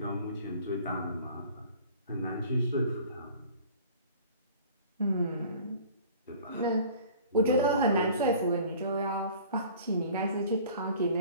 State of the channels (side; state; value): both; inverted; correlation -0.47